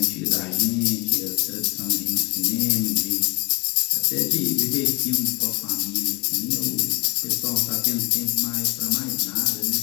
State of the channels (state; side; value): quieter; right; 26.1 dB